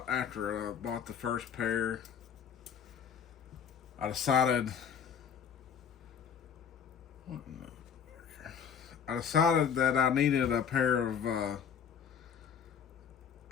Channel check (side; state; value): right; quieter; 7.5 dB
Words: after I bought the first pair. I decided that I needed a pair of